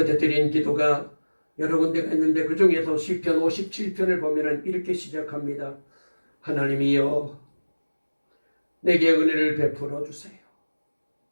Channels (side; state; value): both; inverted; correlation -1.00